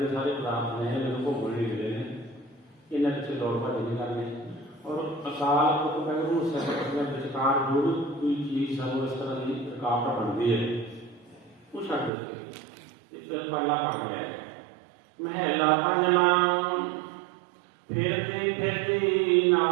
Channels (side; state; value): left; drops out; at 12.1 s